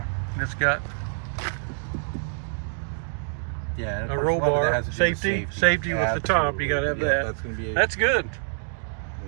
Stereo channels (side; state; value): left; silent; digital silence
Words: it's got a roll bar, safety with the top. You got to have that. That's going to be. That's good.